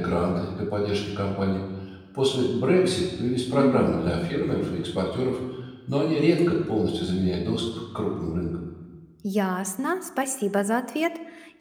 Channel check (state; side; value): identical; both; correlation 1.00